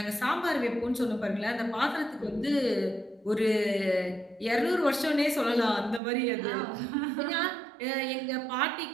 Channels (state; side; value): drops out; left; at 6.0 s